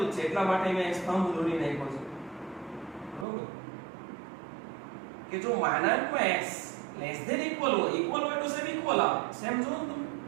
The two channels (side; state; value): left; drops out; at 3.2 s